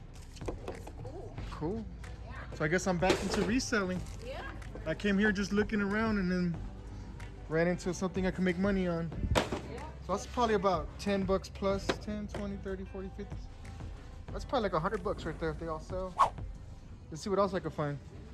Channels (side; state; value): both; identical; correlation 1.00